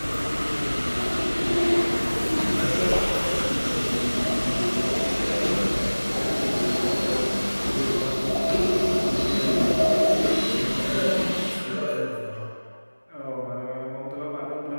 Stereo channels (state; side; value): inverted; both; correlation -1.00